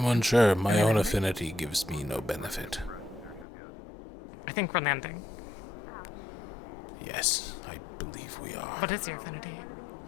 unsure. My own affinity gives me no benefit. I think we're landing. Yes, I believe we are. What is your affinity?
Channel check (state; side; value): drops out; right; at 3.5 s